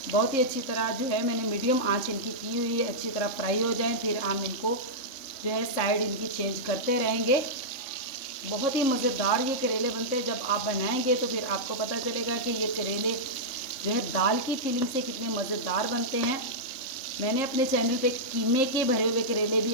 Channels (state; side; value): late; right; 3.6 ms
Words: बहुत ही अच्छी तरह जो है मैंने मीडियम आंच इनकी की हुई है, अच्छी तरह फ्राई हो जाएं फिर हम इनको जो है साइड इनकी चेंज करते रहेंगे। बहुत ही मज़ेदार ये करेले बनते हैं। जब आप बनाएंगे तो फिर आपको पता चलेगा कि ये करेले जो है दाल की फीलिंग से कितने मज़ेदार बनते हैं। मैंने अपने चैनल पे कीमे के भरे हुए करेले भी